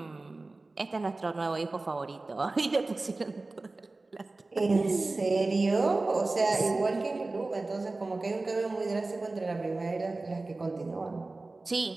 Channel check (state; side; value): quieter; left; 3.3 dB